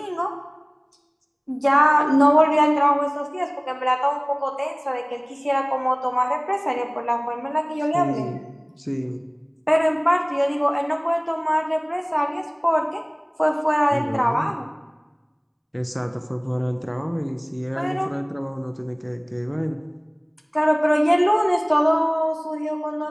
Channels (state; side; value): identical; both; correlation 1.00